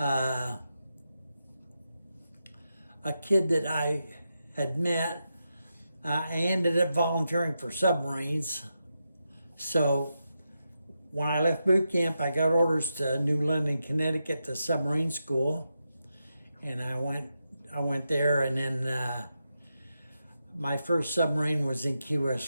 kid that I had met, I ended up volunteering for submarines. So when I left boot camp, I got orders to New London, Connecticut, to submarine school, and I went there, and then my first submarine was in Key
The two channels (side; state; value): both; inverted; correlation -0.87